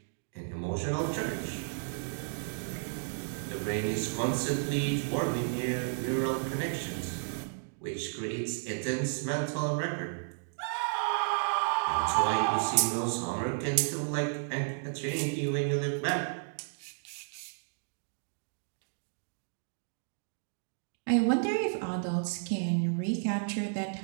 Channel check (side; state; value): left; silent; digital silence